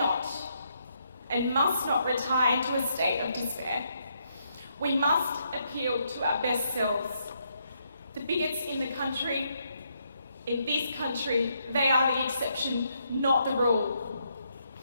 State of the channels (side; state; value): both; inverted; correlation -0.76